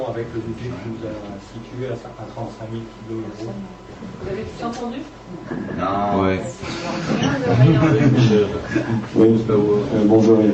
avec le budget que nous avons situé à 35 000 kg. Vous avez tout entendu? Non. Ouais. Oui, bonjour.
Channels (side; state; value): both; identical; correlation 1.00